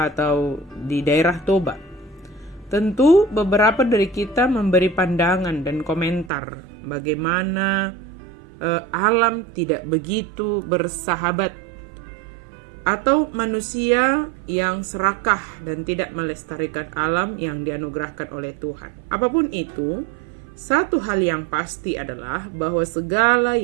atau di daerah Toba, tentu beberapa dari kita memberi pandangan dan komentar bagaimana alam tidak begitu bersahabat, atau manusia yang serakah dan tidak melestarikan alam yang dianugerahkan oleh Tuhan. Apapun itu, satu hal yang pasti adalah bahwa segala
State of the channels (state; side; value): drops out; left; at 6.3 s